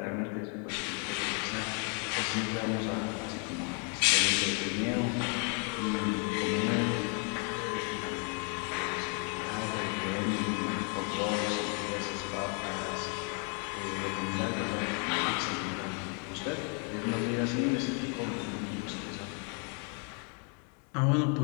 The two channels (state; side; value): quieter; right; 38.9 dB